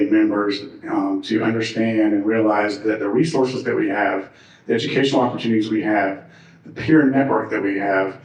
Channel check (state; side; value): identical; both; correlation 1.00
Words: members to understand and realize that the resources that we have, the educational opportunities we have, the peer network that we have,